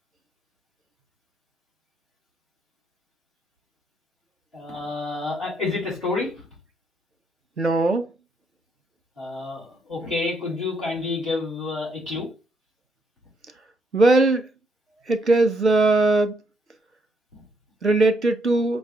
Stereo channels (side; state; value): both; normal; correlation 0.74